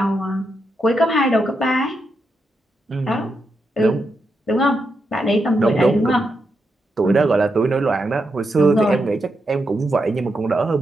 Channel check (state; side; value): normal; both; correlation 0.84